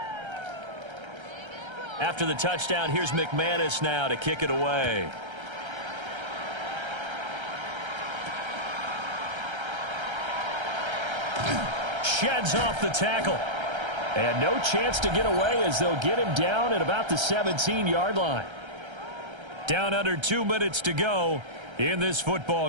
After the touchdown, here's McManus now to kick it away. Sheds off the tackle. And no chance to get away as they'll get him down at about the 17-yard line. Down under 2 minutes to go in this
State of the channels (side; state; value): left; late; 1.3 ms